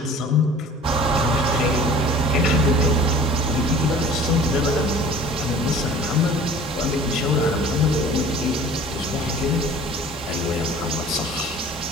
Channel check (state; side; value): normal; both; correlation 0.46